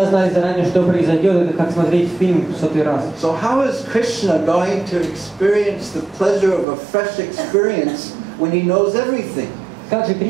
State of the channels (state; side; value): drops out; left; at 6.7 s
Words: знали заранее, что произойдет, это как смотреть фильм в 100-й раз. So how is Krishna going to experience the pleasure of a fresh experience when he knows everything? Как же